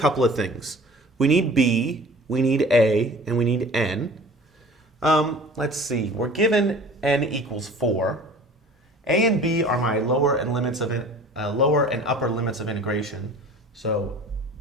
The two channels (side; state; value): both; normal; correlation 0.44